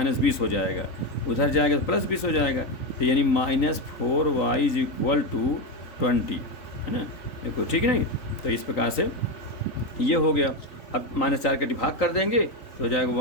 हो जाएगा, उधर जाएगा तो +20 हो जाएगा, तो यानी -4y = 20, है ना। देखो ठीक है नहीं, तो इस प्रकार से ये हो गया। अब -4 का डिवाइड कर देंगे तो हो जाएगा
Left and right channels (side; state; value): right; late; 3.9 ms